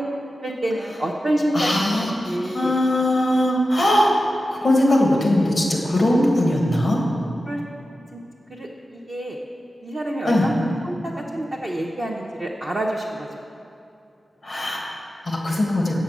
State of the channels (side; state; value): both; normal; correlation 0.92